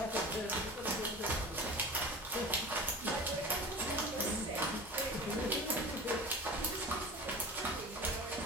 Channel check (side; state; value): both; normal; correlation 0.34